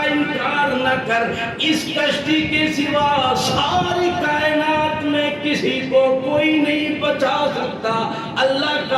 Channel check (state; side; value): identical; both; correlation 1.00